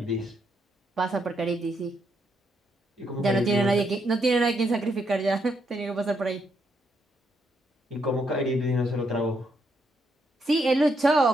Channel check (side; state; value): both; normal; correlation 0.77